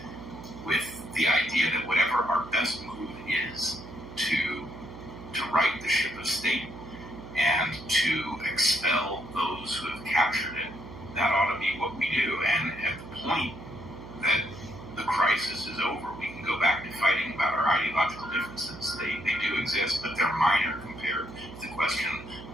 with the idea that whatever our best move is to right the ship of state and to expel those who have captured it, that ought to be what we do. And at the point that the crisis is over, we can go back to fighting about our ideological differences. They do exist, but they're minor compared to the question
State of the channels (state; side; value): noise; right; hum, 14 dB below the sound